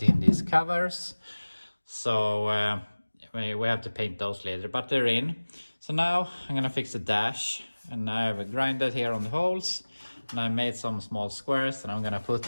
in these covers. So we have to paint those later, but they're in. So now I'm gonna fix the dash, and I have grinded here on the holes, and I made some small squares that I'm gonna put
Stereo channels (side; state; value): both; inverted; correlation -1.00